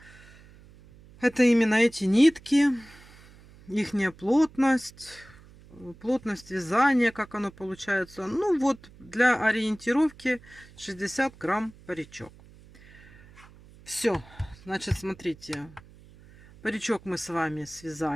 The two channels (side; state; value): right; noise; hum, 23 dB below the sound